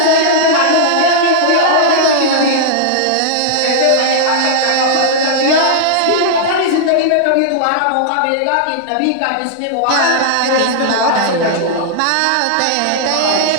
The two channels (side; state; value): both; different; correlation -0.01